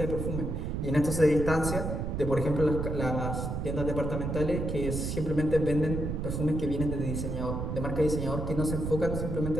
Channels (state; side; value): noise; right; rumble, 3 dB below the sound